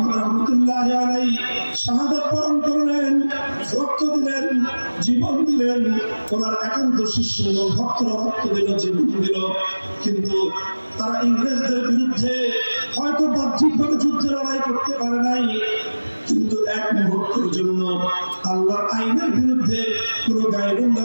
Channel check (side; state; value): both; inverted; correlation -1.00